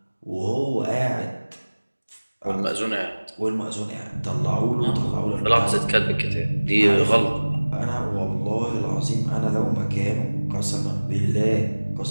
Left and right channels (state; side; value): inverted; both; correlation -1.00